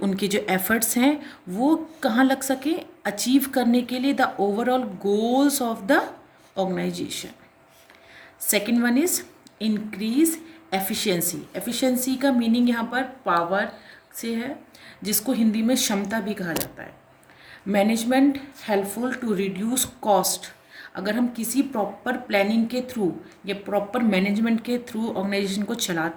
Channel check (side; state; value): both; identical; correlation 1.00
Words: जो एफर्ट्स हैं वो कहाँ लग सके, अचीव करने के लिए the overall goals of the organization. Second one is increase efficiency. Efficiency का मीनिंग यहाँ पर पावर से है, जिसको हिंदी में क्षमता भी कहा जाता है। Management helpful to reduce cost. अगर हम किसी प्रॉपर प्लानिंग के थ्रू या प्रॉपर मैनेजमेंट के थ्रू ऑर्गेनाइजेशन को